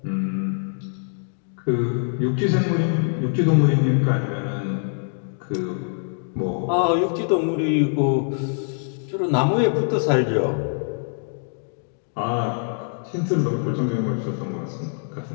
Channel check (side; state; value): right; silent; digital silence